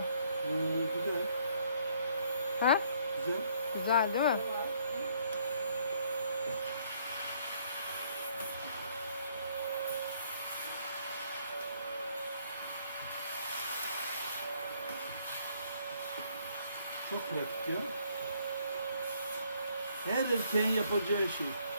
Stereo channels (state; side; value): inverted; both; correlation -0.66